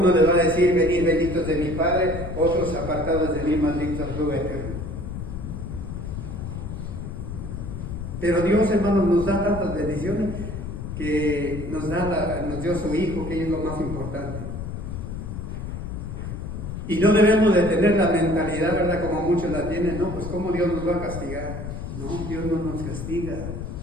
le va a decir, venid benditos de mi Padre, otros apartados de mí, malditos al fuego eterno. Pero Dios, hermanos, nos da tantas bendiciones que nos dio su Hijo, que es lo más importante. Y no debemos de tener la mentalidad, ¿verdad?, como muchos la tienen, no, pues ¿cómo Dios nos va a castigar? No, Dios no nos castiga.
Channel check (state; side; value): noise; left; rumble, 7 dB below the sound